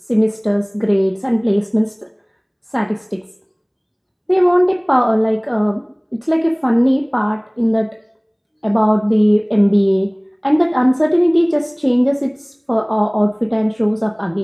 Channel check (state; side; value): identical; both; correlation 1.00